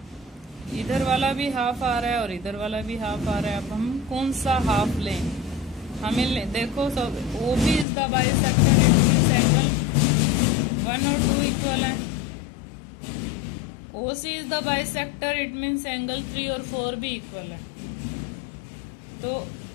इधर वाला भी half आ रहा है और इधर वाला भी हाफ आ रहा है. अब हम कौन सा हाफ लें? हमें देखो, सब OB is the bisector, it means angle 1 और 2 इक्वल हैं. OC is the bisector, it means angle 3 और 4 भी इक्वल है. तो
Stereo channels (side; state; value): right; drops out; at 7.9 s